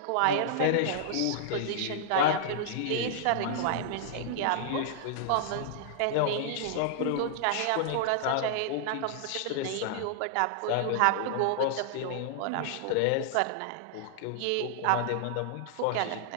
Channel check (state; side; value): different; both; correlation -0.01